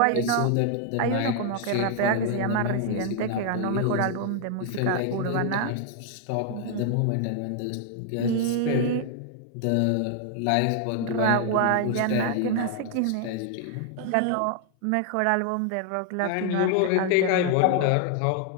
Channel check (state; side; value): different; both; correlation 0.00